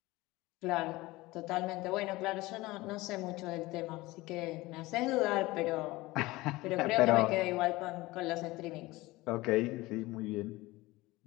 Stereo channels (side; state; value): right; quieter; 20.1 dB